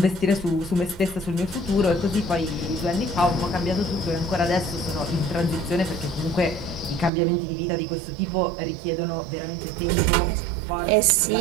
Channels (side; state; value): left; drops out; at 7.1 s